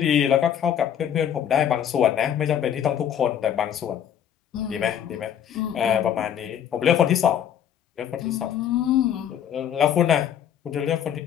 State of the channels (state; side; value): quieter; right; 9.5 dB